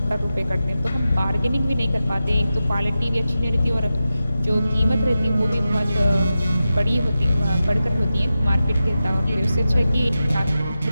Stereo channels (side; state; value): both; inverted; correlation -0.92